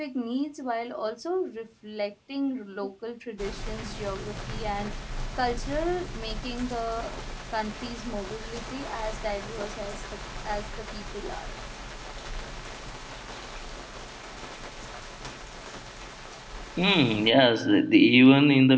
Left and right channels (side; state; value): both; identical; correlation 1.00